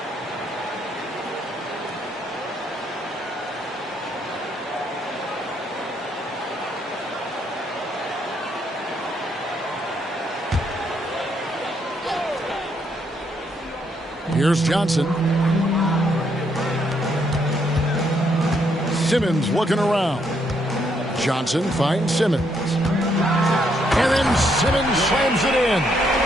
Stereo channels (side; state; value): both; normal; correlation 0.74